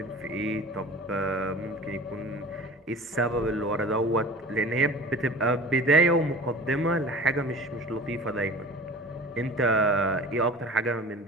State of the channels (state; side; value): normal; both; correlation 0.40